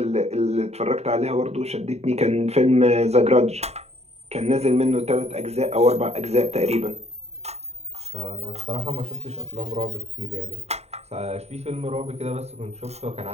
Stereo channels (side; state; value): left; late; 0.31 ms